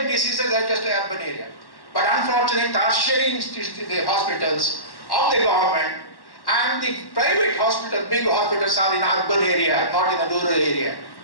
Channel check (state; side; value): late; right; 1.1 ms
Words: diseases as just the urban area. But unfortunately, tertiary the hospitals of the government And the private hospital, big hospitals are in urban area, not in a rural area.